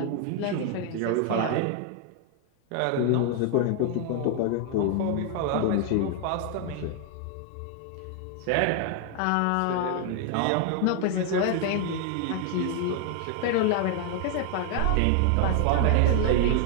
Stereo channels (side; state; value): both; different; correlation 0.00